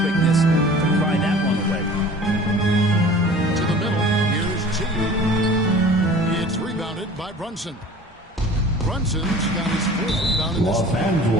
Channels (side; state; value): both; normal; correlation 0.44